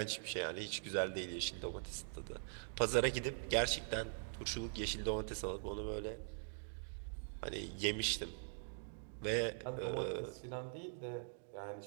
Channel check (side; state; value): left; silent; digital silence